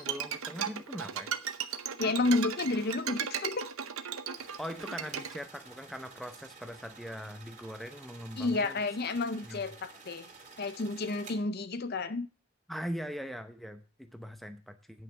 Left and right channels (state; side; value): normal; both; correlation 0.34